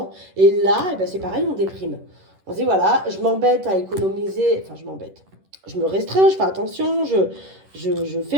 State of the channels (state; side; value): late; left; 11 ms